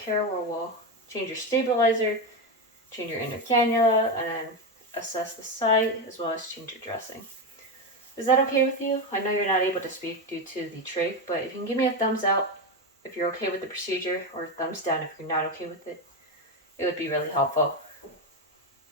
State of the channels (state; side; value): normal; both; correlation 0.12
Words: care, where we'll change your stabilizer, change your inner cannula, and then assess the site, as well as change your dressing. Is that okay with you? I know you're not able to speak due to the trach, but if you can give me a thumbs up if you're okay with the procedure, or a thumbs down if you're not okay with it, it would be really helpful.